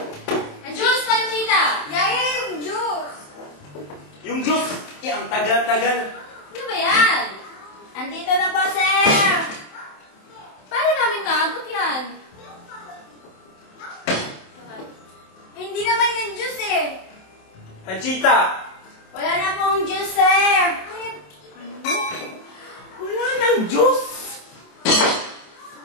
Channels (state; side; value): late; right; 27 ms